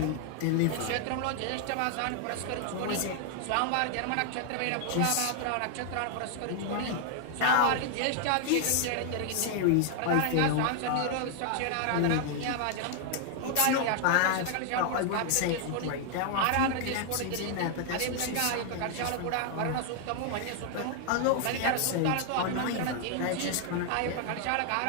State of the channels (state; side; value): different; both; correlation 0.00